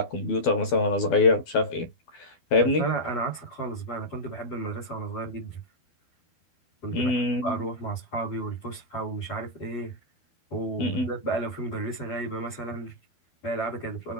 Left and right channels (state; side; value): late; right; 12 ms